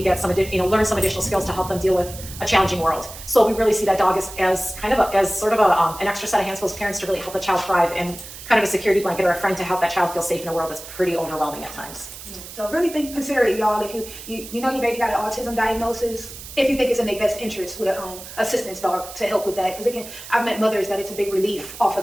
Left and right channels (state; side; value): noise; right; hiss, 13 dB below the sound